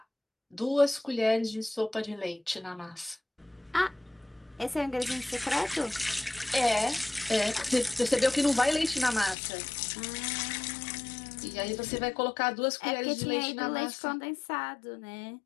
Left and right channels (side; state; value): right; drops out; at 9.3 s